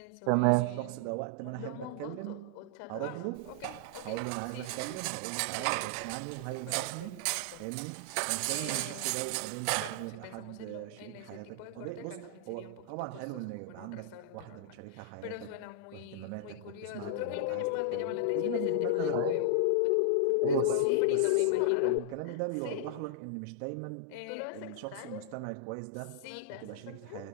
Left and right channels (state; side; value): different; both; correlation -0.01